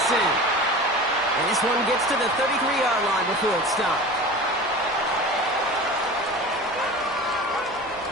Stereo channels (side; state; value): both; normal; correlation 0.35